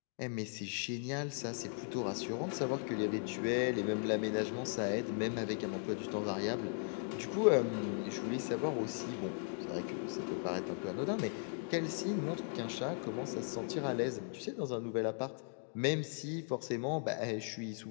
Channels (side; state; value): right; silent; 53 dB below the other